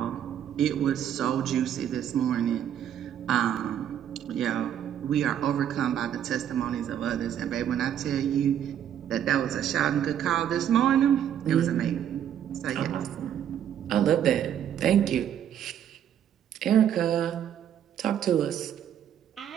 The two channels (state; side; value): quieter; left; 9.8 dB